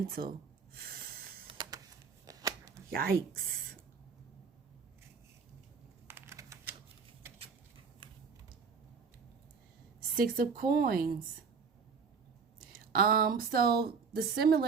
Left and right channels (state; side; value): quieter; left; 5.6 dB